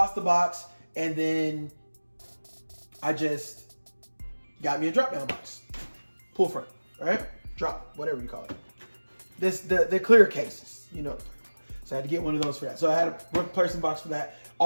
the box, and then I just got me a drop down box. Pull front, right? Drop, whatever you call it. The clear cases, you know. So I had to get one of those for that. So I had a replacement box for that.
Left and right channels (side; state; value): both; inverted; correlation -1.00